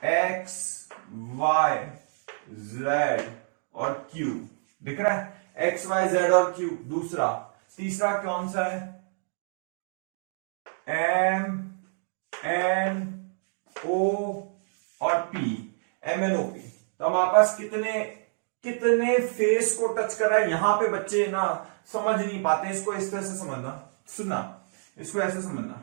X Y Z और Q, दिख रहा है, एक्स वाई जेड और क्यू। दूसरा, तीसरा कौन सा है, एम एन ओ और P, M N O P. तो हमारे पास कितने कितने फेस को टच कर रहा है। यहां पे बच्चे ना समझ नहीं पाते, इसको इस तरह से समझना, सुनना, इसको ऐसे समझना।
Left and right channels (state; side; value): silent; left; digital silence